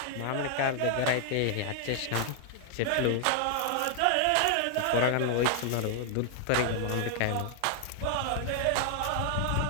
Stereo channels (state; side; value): different; both; correlation 0.00